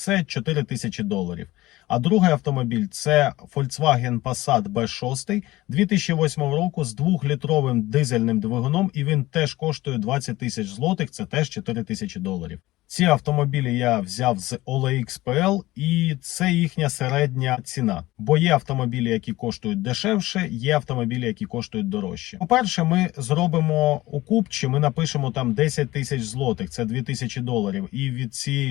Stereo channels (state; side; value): quieter; right; 18.0 dB